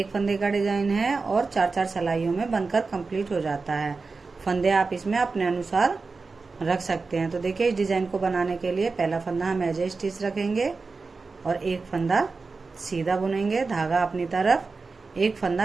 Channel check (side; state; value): left; quieter; 4.2 dB